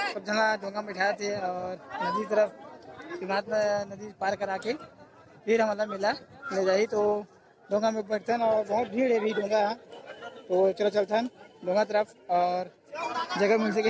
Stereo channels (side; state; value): both; identical; correlation 1.00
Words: सब जना डोंगा में बैठाए थे और नदी तरफ शिवनाथ नदी पार करा के फिर हमारा मेला ले जाई तो डोंगा में बैठते हैं और बहुत भीड़ है भी डोंगा। तो चलो चलते हैं डोंगा तरफ और जगह मिल